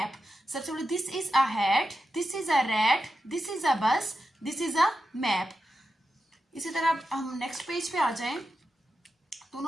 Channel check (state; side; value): normal; both; correlation 0.89